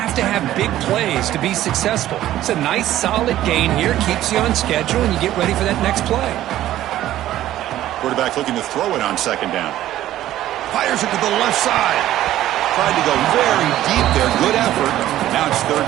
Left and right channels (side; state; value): left; quieter; 13.5 dB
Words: to have big plays to be successful. It's a nice, solid gain here, keeps you on schedule, and you get ready for that next play. Quarterback looking to throw it on 2nd down. Fires it to the left side. Tried to go very deep there. Good effort. Now it's 3rd